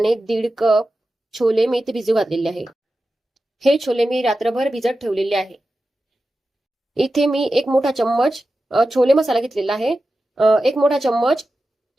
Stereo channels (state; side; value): normal; both; correlation 0.93